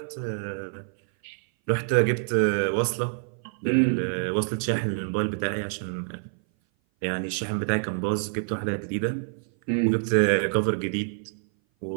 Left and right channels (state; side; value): silent; left; 58 dB below the other